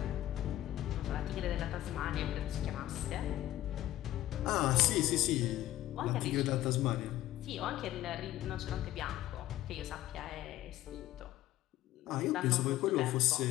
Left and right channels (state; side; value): quieter; right; 14.4 dB